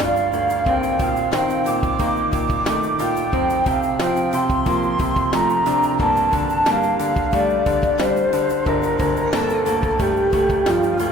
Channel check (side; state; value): both; normal; correlation 0.62